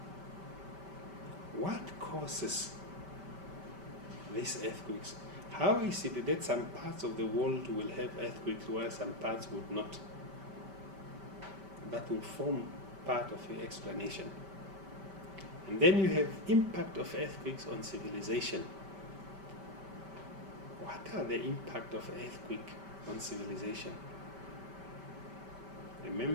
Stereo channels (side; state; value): left; late; 5.1 ms